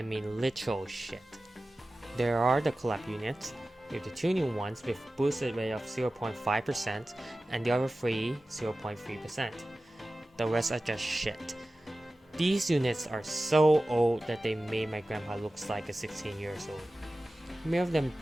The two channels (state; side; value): normal; both; correlation 0.96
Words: mean literal shit. There are the collab units, with the 2 new ones with boosted rate of 0.5% and the other 3 0.3%. The rest are just shit. These units are so old that they made my grandpa looks like a 16 years old. Many of them